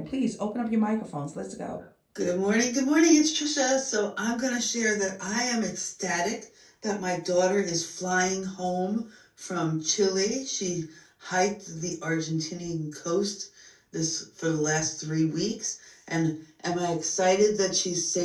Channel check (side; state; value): both; identical; correlation 1.00